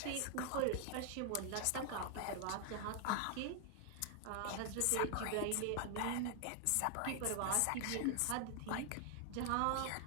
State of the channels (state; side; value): different; both; correlation 0.00